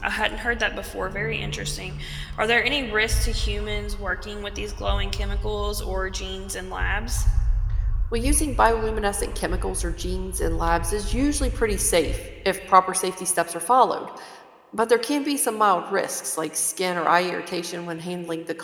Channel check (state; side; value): identical; both; correlation 1.00